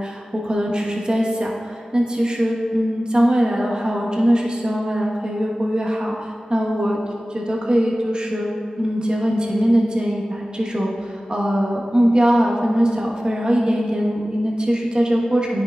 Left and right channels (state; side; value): normal; both; correlation 0.96